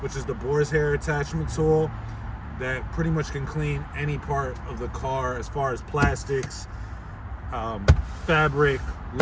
which is the boar's hair attachment tool that pretty much can clean any part of the car as far as plastics, fabric,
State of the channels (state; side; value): identical; both; correlation 1.00